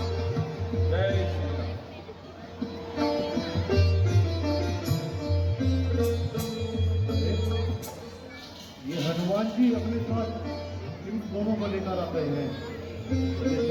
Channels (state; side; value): identical; both; correlation 1.00